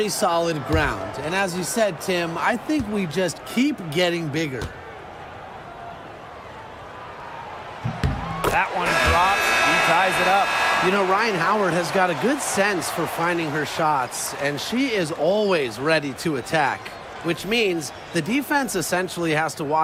solid ground. And as you said, Tim, I think we just keep getting bigger. That one drops. He ties it up. You know, Ryan Howard has got a good sense for finding her shots, and she is always ready to attack, which means the defense essentially has to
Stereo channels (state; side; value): identical; both; correlation 1.00